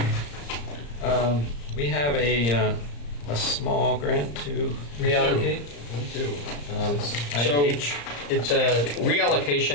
We have a a small grant to reallocate? We do. Item So H. it's a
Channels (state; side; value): late; right; 35 ms